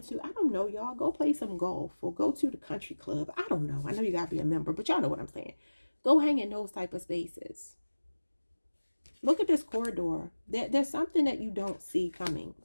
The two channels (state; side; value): inverted; both; correlation -1.00